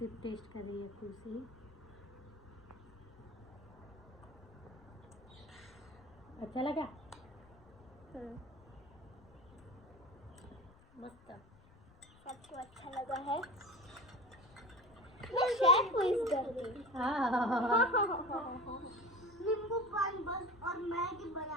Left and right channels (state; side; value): noise; left; rumble, 24 dB below the sound